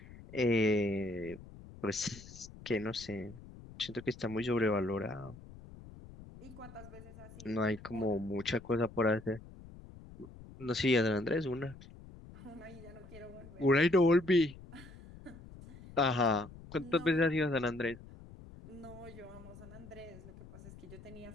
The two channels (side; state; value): left; noise; rumble, 17 dB below the sound